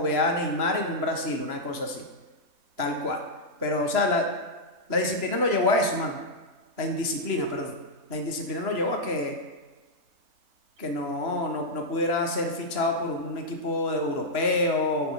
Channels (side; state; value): left; late; 3.1 ms